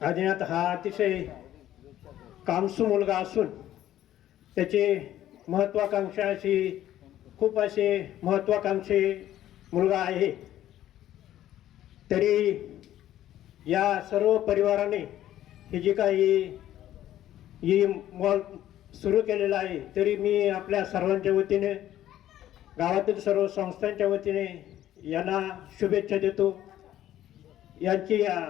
आदिनाथ हा अतिशय कामसू मुलगा असून त्याचे खूप असे महत्वाकांक्षी मुलगा आहे। तरी या सर्व परिवाराने हे जे काही मॉल सुरू केलेला आहे, तरी मी आपल्या सर्वांच्या वतीने, गावातील सर्व संस्थांच्या वतीने यांना शुभेच्छा देतो। यांची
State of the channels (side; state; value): right; quieter; 12.7 dB